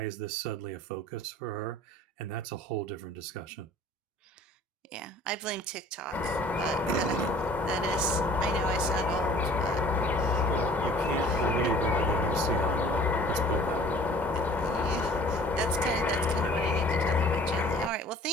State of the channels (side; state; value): both; normal; correlation 0.50